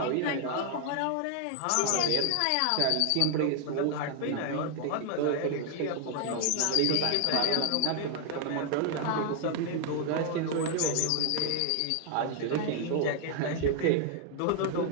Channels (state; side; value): different; both; correlation 0.00